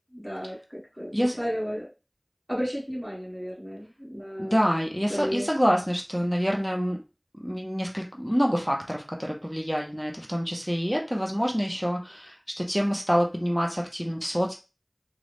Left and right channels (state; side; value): identical; both; correlation 1.00